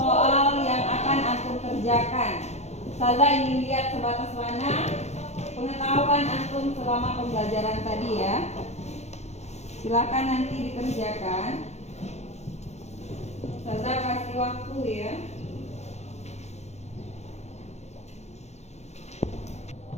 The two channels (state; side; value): late; right; 0.32 ms